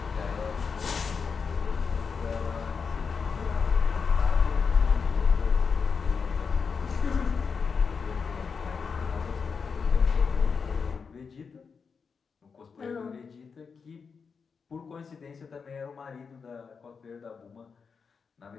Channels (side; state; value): right; quieter; 5.6 dB